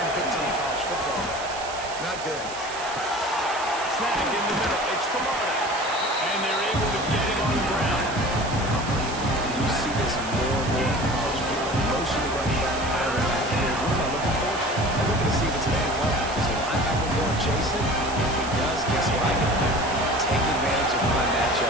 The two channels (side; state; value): right; noise; hiss, 12 dB below the sound